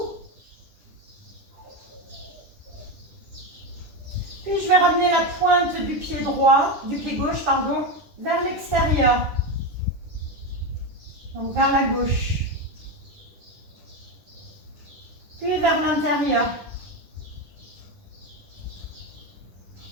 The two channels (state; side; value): late; left; 10 ms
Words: Puis, je vais ramener la pointe du pied droit, du pied gauche, pardon, vers l'extérieur. Donc, vers la gauche. Puis, vers l'intérieur.